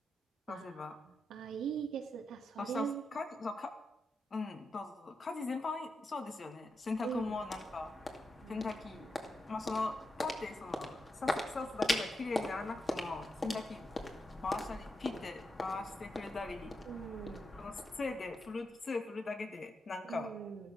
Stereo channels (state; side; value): normal; both; correlation 0.86